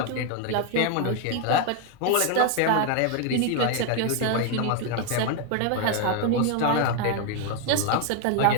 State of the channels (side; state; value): both; different; correlation 0.01